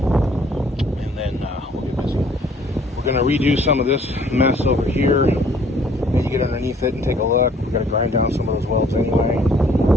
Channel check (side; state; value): both; normal; correlation 0.59